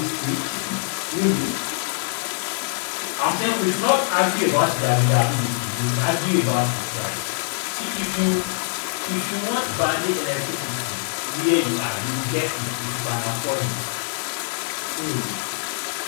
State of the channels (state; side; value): silent; right; 59 dB below the other